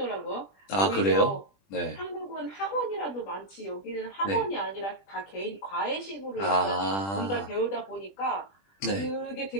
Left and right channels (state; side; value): late; right; 20 ms